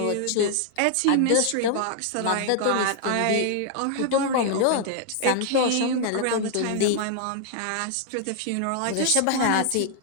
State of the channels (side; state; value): both; different; correlation 0.00